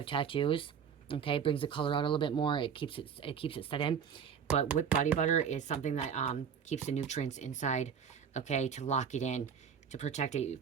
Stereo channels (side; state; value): left; quieter; 7.3 dB